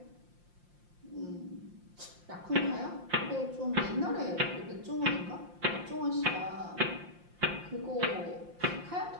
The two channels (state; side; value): late; left; 5.7 ms